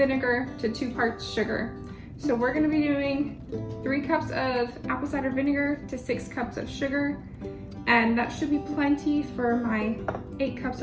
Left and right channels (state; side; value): identical; both; correlation 1.00